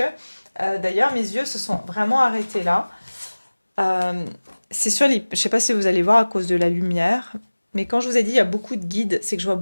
d'ailleurs, mes yeux se sont vraiment arrêtés là. C'est sur les... Je ne sais pas si vous allez voir à cause de la lumière, mais quand je vous ai dit il y a beaucoup de guides, c'est que je vois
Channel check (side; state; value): both; inverted; correlation -1.00